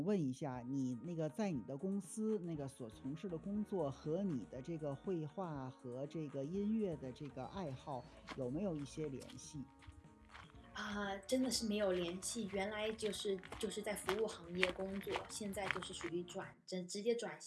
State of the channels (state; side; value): identical; both; correlation 1.00